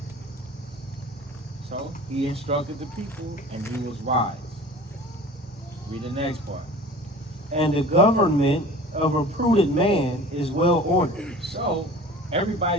So he instructed the people, and he was wise. Read the next part. And the government of a prudent man is well ordered. So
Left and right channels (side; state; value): both; normal; correlation 0.42